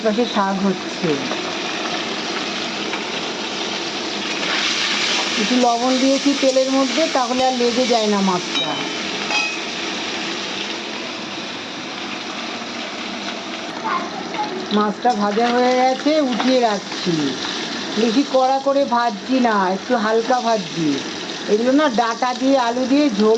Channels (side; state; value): both; identical; correlation 1.00